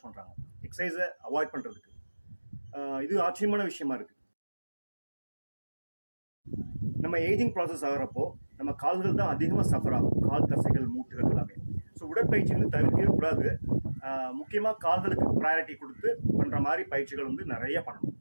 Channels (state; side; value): inverted; both; correlation -1.00